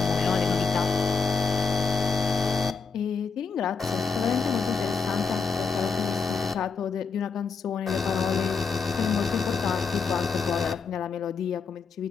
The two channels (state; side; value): quieter; right; 5.0 dB